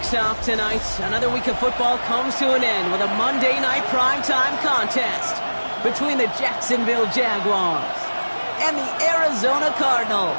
off tonight, another week of football comes to an end with a Monday Night Primetime contest between the Jacksonville Jaguars and the Arizona Cardinals.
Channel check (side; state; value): both; inverted; correlation -1.00